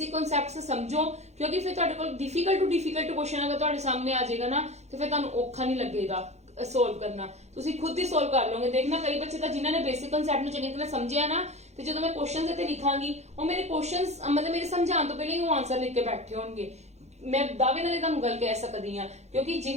कॉन्सेप्ट्स समझो, क्योंकि फिर तुहाडे कोल डिफिकल्ट क्वेश्चन अगर तुहाडे सामने आ जाएगा ना तो फिर तुहानू औखा नहीं लगेगा सोल्व करना, तुसी खुद ही सोल्व कर लोगे। देखना कई बच्चे तो जिन्होंने बेसिक कॉन्सेप्ट ਨੂੰ ਚੰਗੀ ਤਰ੍ਹਾਂ ਸਮਝਿਆ ਨਾ, ਤੇ ਜਦੋਂ ਮੈਂ ਕੁਐਸਚਨਸ ਇੱਥੇ ਲਿਖਾਂਗੀ ਉਹ ਮੇਰੇ ਕੁਐਸਚਨਸ ਮਤਲਬ ਮੇਰੇ ਸਮਝਾਉਣ ਤੋਂ ਪਹਿਲਾਂ ਹੀ ਉਹ ਆਨਸਰ ਲਿਖ ਕੇ ਬੈਠੇ ਹੋਣਗੇ। मैं दावे नाल ਤੁਹਾਨੂੰ ਗੱਲ ਕਹਿ ਸਕਦੀ ਹਾਂ, ਕਿਉਂਕਿ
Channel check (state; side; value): late; left; 0.32 ms